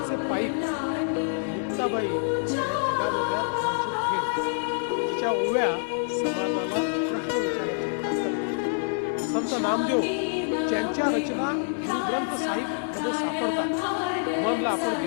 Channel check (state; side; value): silent; right; 60 dB below the other